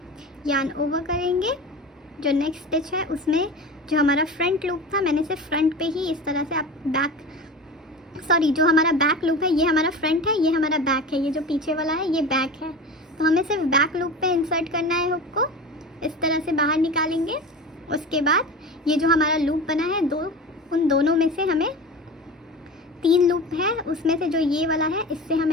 यान ओवर करेंगे। जो नेक्स्ट स्टिच है उसमें जो हमारा फ्रंट लूप था मैंने सिर्फ फ्रंट पे ही इस तरह से, आप जो हमारा बैक लूप है ये हमारा फ्रंट है, ये हमारा बैक है, ये जो पीछे वाला है ये बैक है। तो हमें सिर्फ बैक लूप पे इंसर्ट करना है हुक को, इस तरह से बाहर निकालेंगे। उसके बाद ये जो हमारा लूप बना है उन दोनों में से हमें 3 लूप है, उसमें से जो ये वाला है इससे हम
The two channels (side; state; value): both; normal; correlation 0.31